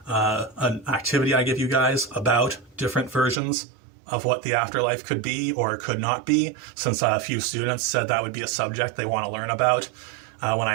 an activity I give you guys about different versions of what the afterlife could be or could not be, since a few students said that would be a subject they want to learn about when I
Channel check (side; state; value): left; drops out; at 3.4 s